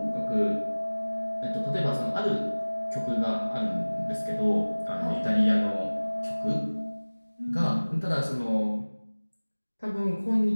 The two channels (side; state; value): both; inverted; correlation -1.00